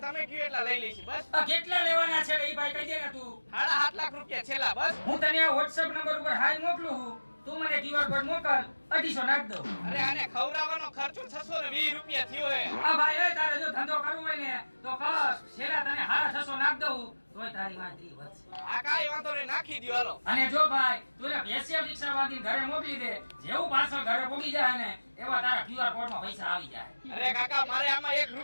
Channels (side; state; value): both; inverted; correlation -1.00